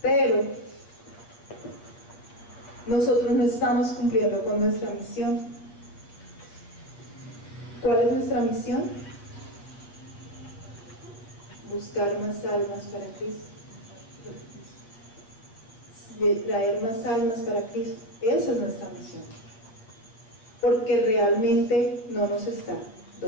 Pero nosotros no estamos cumpliendo con nuestra misión. ¿Cuál es nuestra misión? Buscar más almas para Cristo, traer más almas para Cristo. Esa es nuestra misión, porque realmente no nos está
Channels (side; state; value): right; late; 8.7 ms